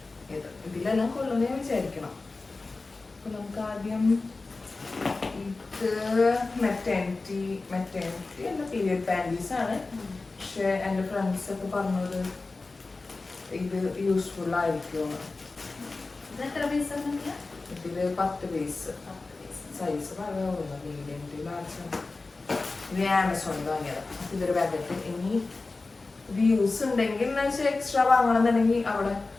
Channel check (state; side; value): quieter; right; 3.6 dB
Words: ഇതിലെല്ലാം കൊള്ളുന്ന ഞാൻ വിചാരിക്കണം. അപ്പൊ നമുക്ക് ആദ്യം ഇത് മെറ്റേണിറ്റി അല്ല, പീരിയഡ് പാൻറ്റീസ് ആണ്. പക്ഷെ എൻ്റെ ഫ്രണ്ട്സ് ഒക്കെ പറഞ്ഞത് ഇത് യൂസ്ഫുൾ ആയിരിക്കും. ഇതില് 10 പീസ് സൈസ് പറയാവുന്ന മീഡിയം ടു ലാർജ്. ഇത് ആമസോണിൽ വാങ്ങിയതാണ്. ഇതൊരു പാക്കറ്റ്. ഇനി ഇത് യൂസ് ഉണ്ടെങ്കിൽ എക്സ്ട്രാ വാങ്ങണമെന്നുണ്ടെങ്കിൽ അവിടെ